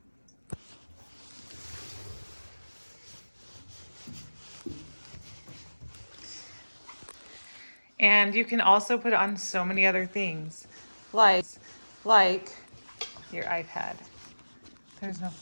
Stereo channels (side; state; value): both; inverted; correlation -1.00